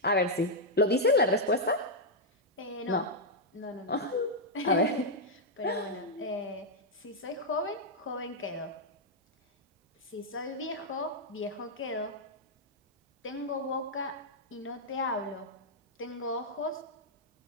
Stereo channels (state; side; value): normal; both; correlation -0.03